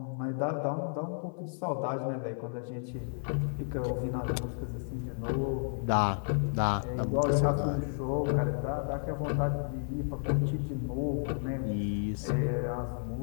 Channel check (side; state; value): right; silent; 56 dB below the other